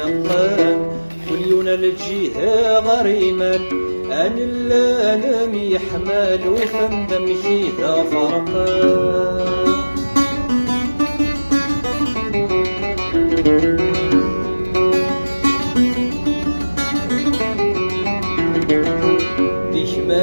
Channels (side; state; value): both; inverted; correlation -1.00